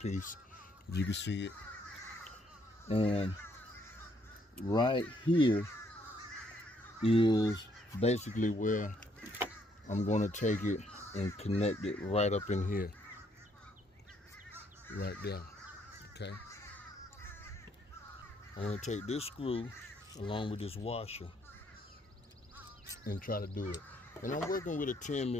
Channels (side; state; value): both; normal; correlation 0.70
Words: if you can see it. And right here is basically where I'm going to take it and connect it right up in here, right there. Okay, I'm going to take this screw along with this washer and try to do it. And I'm working with a